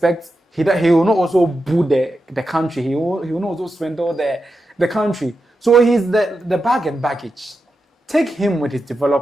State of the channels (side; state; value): both; normal; correlation 0.89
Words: He will not also boo the country. He will not also swindle the country. So he's the bag and baggage. Take him with his